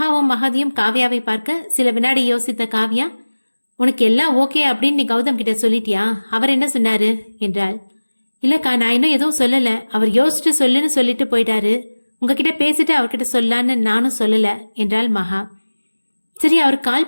மகதியும் காவ்யாவை பார்க்க சில வினாடி யோசித்த காவ்யா, உனக்கு எல்லாம் ஓகே அப்படின்னு நீ கௌதம் கிட்ட சொல்லிட்டியா? அவர் என்ன சொன்னாரு என்றாள். இல்லக்கா, நான் இன்னும் எதுவும் சொல்லல. அவர் யோசிச்சுட்டு சொல்லுன்னு சொல்லிட்டு போயிட்டாரு. உங்ககிட்ட பேசிட்டு அவர்கிட்ட சொல்லான்னு நானும் சொல்லல என்றாள் மகா. சரி, அவர்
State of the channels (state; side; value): inverted; both; correlation -1.00